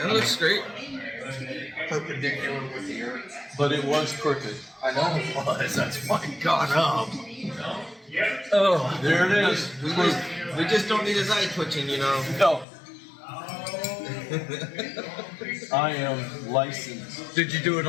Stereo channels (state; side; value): drops out; right; at 12.7 s